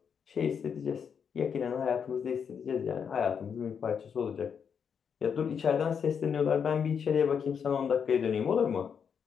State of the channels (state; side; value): quieter; right; 7.0 dB